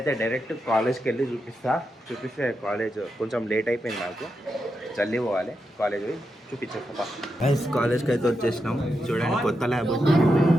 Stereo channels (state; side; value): normal; both; correlation 0.86